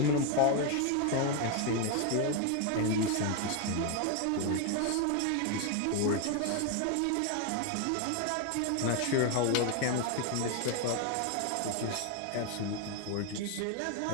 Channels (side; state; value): both; different; correlation 0.01